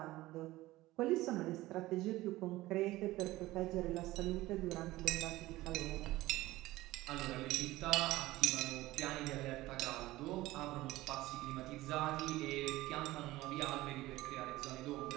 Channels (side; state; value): left; quieter; 17.7 dB